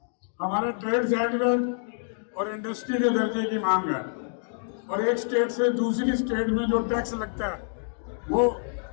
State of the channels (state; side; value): silent; right; 60 dB below the other